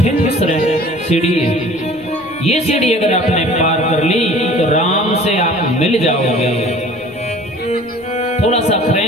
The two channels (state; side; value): normal; both; correlation 0.47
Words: सीढ़ी है। ये सीढ़ी अगर आपने पार कर ली तो राम से आप मिल जाओगे। थोड़ा सा